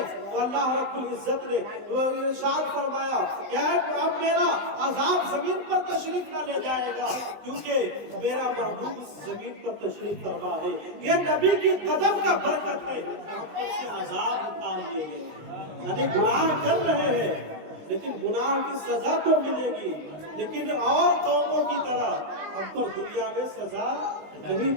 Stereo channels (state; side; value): late; left; 20 ms